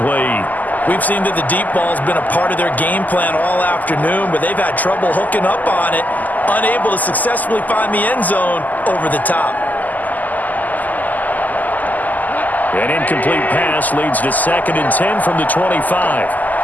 We've seen that the deep ball's been a part of their game plan all afternoon, but they've had trouble hooking up on it, unable to successfully find the end zone over the top. An incomplete pass leads to 2nd and 10 from the 25.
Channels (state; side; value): late; right; 0.081 ms